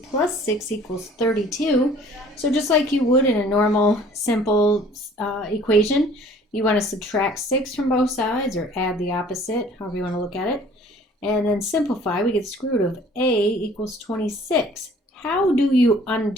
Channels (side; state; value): both; normal; correlation 0.53